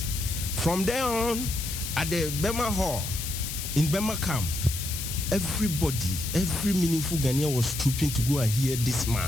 From there on, at the Bema Hall, in Bema Camp, everybody, every meaningful Ghanaian was trooping to go and hear this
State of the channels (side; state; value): left; noise; hiss, 6 dB below the sound